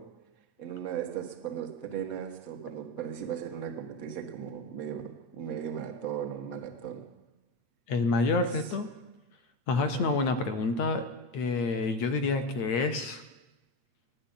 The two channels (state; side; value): late; right; 8.4 ms